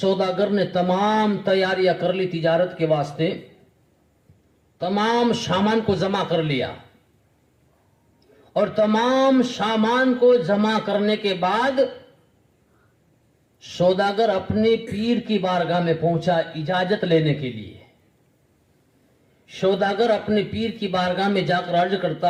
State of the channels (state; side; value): identical; both; correlation 1.00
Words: ने तमाम तैयारियां कर ली तिजारत के वास्ते, तमाम सामान को जमा कर लिया और तमाम सामान को जमा करने के बाद सौदागर अपने पीर की बारगाह में पहुंचा इजाजत लेने के लिए। सौदागर अपने पीर की बारगाह में जाकर अर्ज